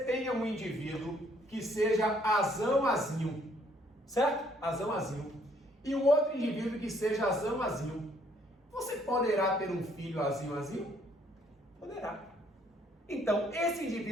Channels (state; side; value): normal; both; correlation 0.65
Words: tenha um indivíduo que seja azão-azinho. certo? Azão, azinho. E o outro indivíduo que seja azão, azinho. Você poderá ter um filho azinho, azinho? Poderá. Então, esse